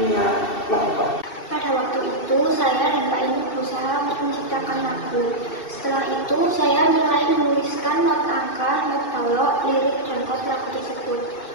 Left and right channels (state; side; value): late; right; 2.7 ms